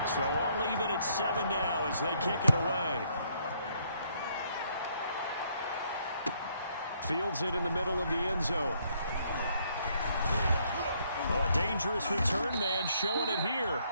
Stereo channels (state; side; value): inverted; both; correlation -0.69